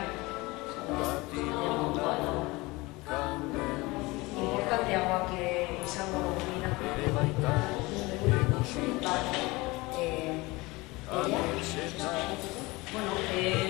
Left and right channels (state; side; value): quieter; right; 22.7 dB